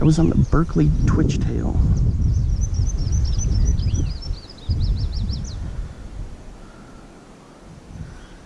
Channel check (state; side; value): identical; both; correlation 1.00